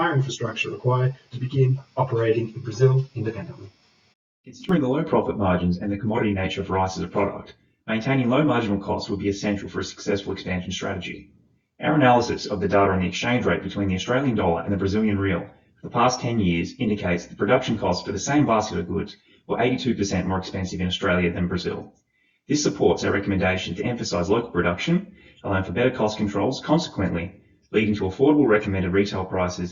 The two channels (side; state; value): both; identical; correlation 1.00